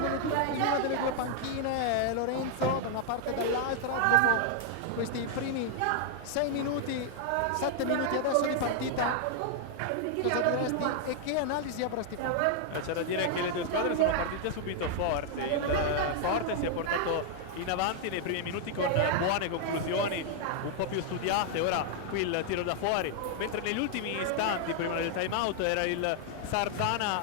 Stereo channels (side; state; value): both; different; correlation 0.00